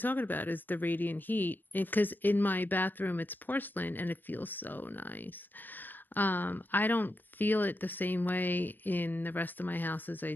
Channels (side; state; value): right; late; 0.091 ms